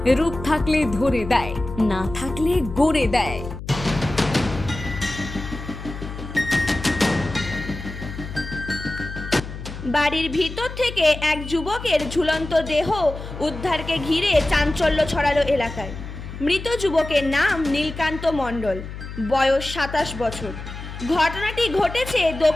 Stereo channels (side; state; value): left; noise; hum, 10 dB below the sound